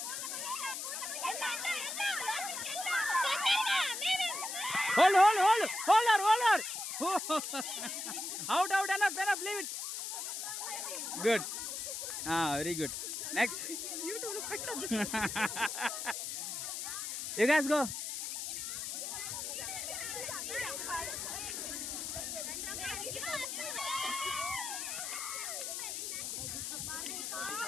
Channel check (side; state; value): left; noise; hiss, 4 dB below the sound